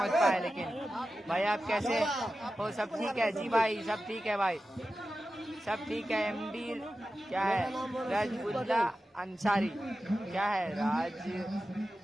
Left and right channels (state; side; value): normal; both; correlation 0.93